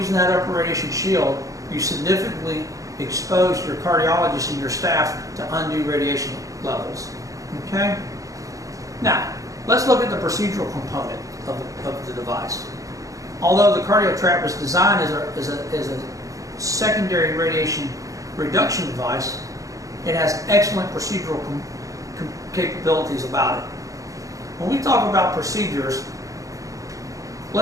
that upper radiation shield, you significantly expose your cardiologist and your staff to undue radiation levels. Okay? Now, let's look at the procedural component of the device. Although the CardioTrap was designed as a secondary radiation reduction device, it has excellent procedural capabilities about it. When we talk about procedures,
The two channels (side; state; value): left; late; 0.16 ms